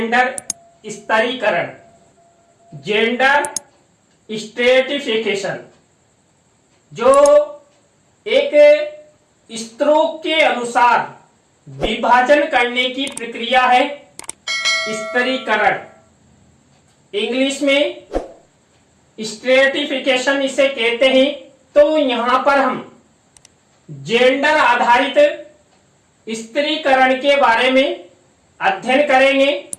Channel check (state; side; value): identical; both; correlation 1.00